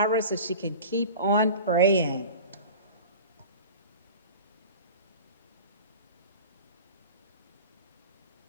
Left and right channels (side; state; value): both; inverted; correlation -0.37